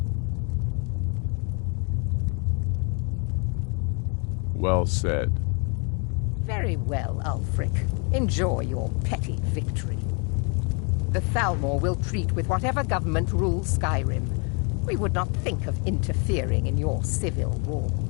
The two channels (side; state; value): right; quieter; 36.5 dB